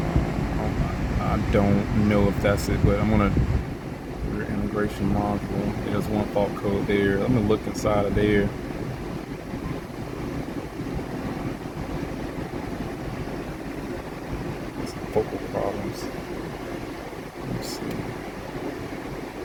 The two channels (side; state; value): both; identical; correlation 1.00